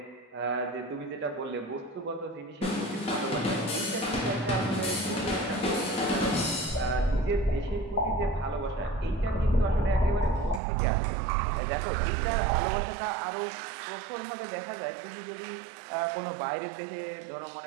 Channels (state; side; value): drops out; left; at 10.6 s